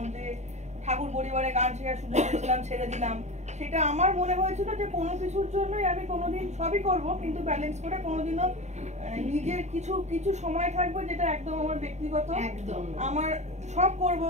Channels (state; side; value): late; left; 0.33 ms